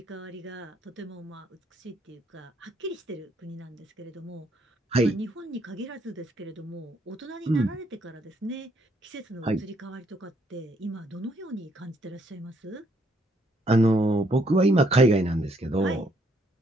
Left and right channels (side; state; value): both; normal; correlation 0.70